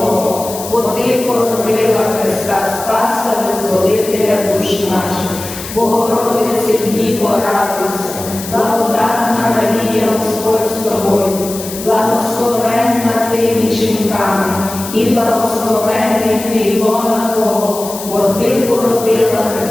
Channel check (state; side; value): noise; left; hiss, 11 dB below the sound